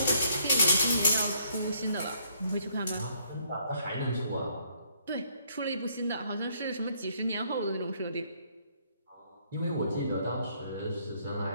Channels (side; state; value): both; inverted; correlation -0.68